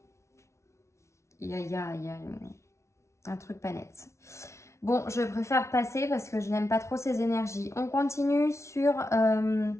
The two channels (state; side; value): late; right; 0.13 ms